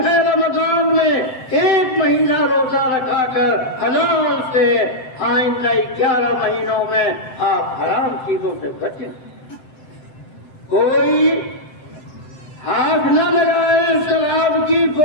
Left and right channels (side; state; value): right; late; 7.7 ms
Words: ہے۔ رمضان میں ایک مہینہ روزہ رکھا کر حلال سے آئندہ 11 مہینوں میں آپ حرام چیزوں سے بچیں۔ کوئی ہاتھ نہ لگائے شراب کی